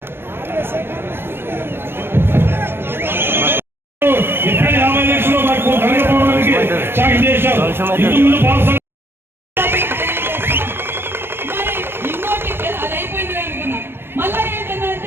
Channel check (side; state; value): left; late; 0.11 ms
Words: ఇప్పుడే 50 లక్షలు మాకు కనకపోవడానికి చాకి చేశాం.